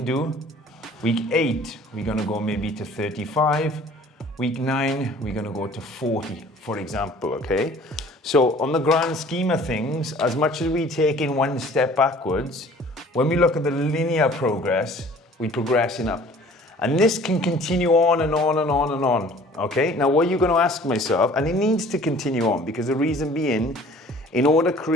do. Week 8, we're gonna go maybe to 35. Week 9, we're gonna go to 40, for example, okay? So on the grand scheme of things, as much as we take in 1 step backwards, when we look at the linear progress, we're progressing up. And this can continue on and on and on and on, okay? Now what you're gonna ask myself, and it needs to continue on, because the reason being, in order to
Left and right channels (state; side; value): normal; both; correlation 0.50